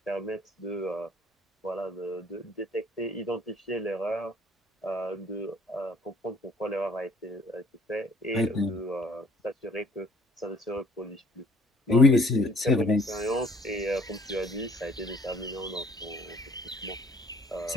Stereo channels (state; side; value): normal; both; correlation 0.57